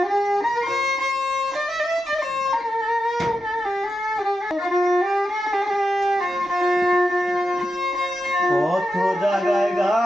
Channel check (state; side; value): normal; both; correlation 0.88